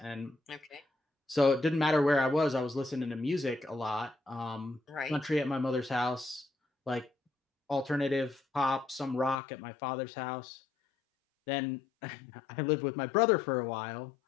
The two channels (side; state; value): right; drops out; at 9.3 s